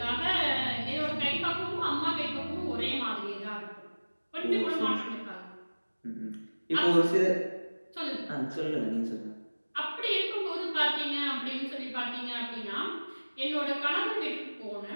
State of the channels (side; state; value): both; inverted; correlation -1.00